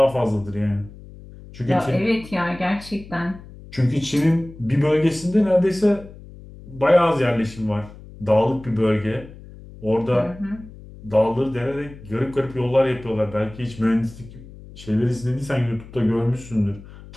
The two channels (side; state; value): left; noise; hum, 18 dB below the sound